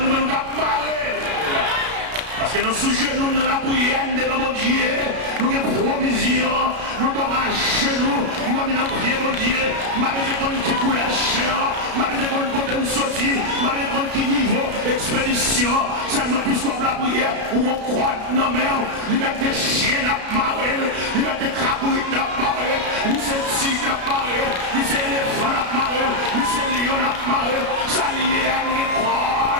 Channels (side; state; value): left; late; 33 ms